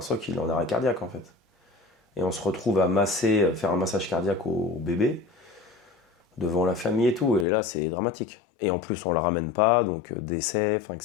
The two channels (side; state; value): right; drops out; at 7.5 s